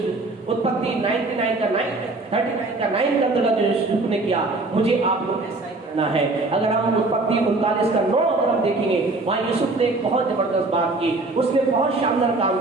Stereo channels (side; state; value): left; quieter; 3.2 dB